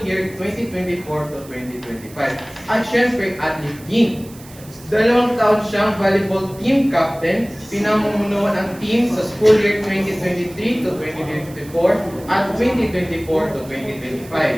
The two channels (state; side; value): noise; right; hiss, 21 dB below the sound